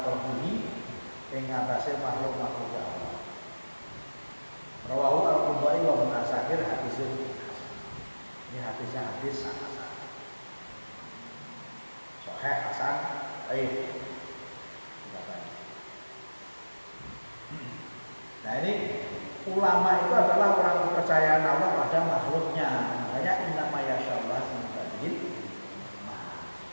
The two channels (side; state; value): both; inverted; correlation -1.00